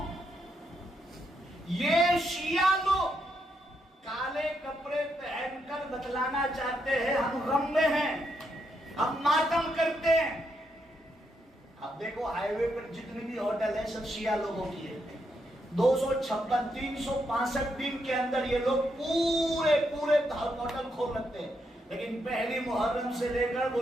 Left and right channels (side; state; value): both; normal; correlation 0.80